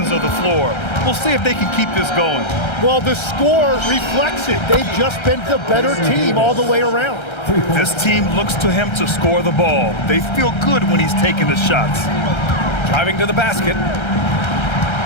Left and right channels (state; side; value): late; right; 1.3 ms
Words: of the floor. We'll see if they can keep this going. Well, the score reflects it. They've just been the better team all the way around. This team looks to him to score the ball. They feel good when he's taking the shots. Driving to the basket.